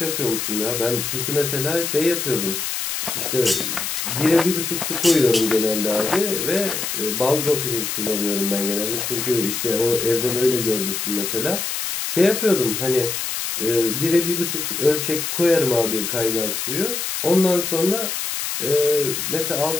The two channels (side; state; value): left; noise; hiss, 3 dB below the sound